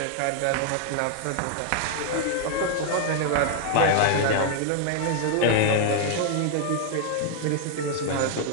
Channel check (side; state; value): both; different; correlation 0.00